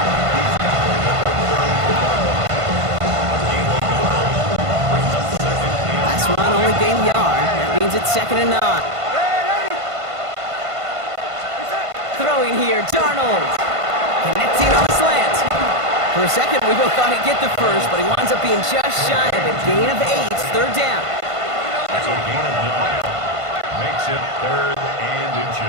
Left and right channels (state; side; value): late; left; 1.5 ms